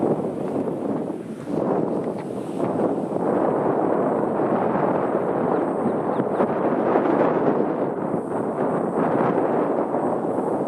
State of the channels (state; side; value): identical; both; correlation 1.00